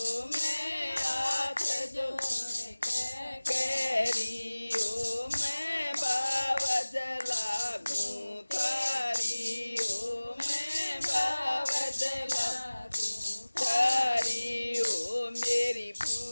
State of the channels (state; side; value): inverted; both; correlation -1.00